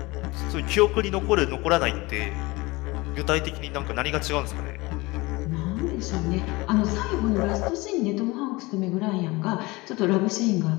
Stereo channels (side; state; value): right; quieter; 22.7 dB